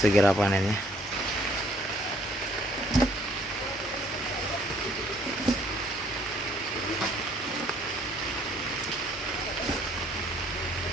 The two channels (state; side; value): normal; both; correlation 0.62